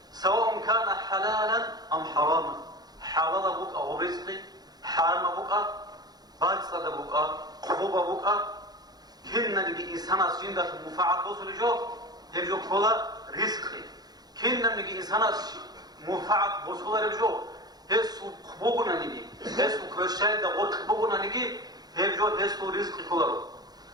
سواء كان حلالا أم حراما. حلال بوك أو رزقي، حرام بوك باطل بوك خوب بوك كنا نجي إنسان جنة منفعة مسلم جو هجو كلا رزقي. كنا نجي إنسان منفعة بوصولة رجو هسو خبوغنا نيجي هسو كرشاي دا غور خبوغنا نيجي هبجو هسو رزق كولارو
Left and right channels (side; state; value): left; late; 0.19 ms